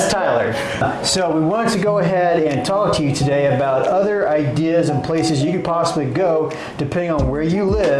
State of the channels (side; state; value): both; identical; correlation 1.00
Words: Tyler. So we wanted to go ahead and talk to you today about other ideas and places you could possibly go depending on where you